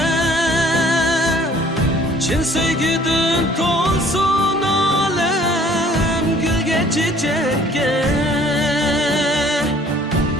chin sevgidan to'lsin olam gulga chechakka.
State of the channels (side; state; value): both; normal; correlation 0.56